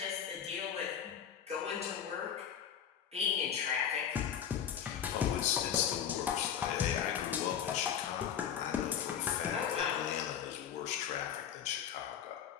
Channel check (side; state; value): right; quieter; 8.9 dB